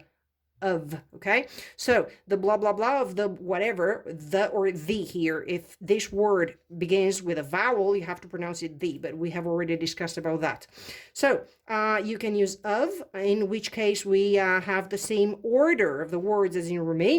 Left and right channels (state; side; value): identical; both; correlation 1.00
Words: okay? So the blah, blah, blah of the whatever, the or the here, if this word begins with a vowel, you have to pronounce it the, but we have already discussed about that. So you can use of, in which case we have the same order of the words as in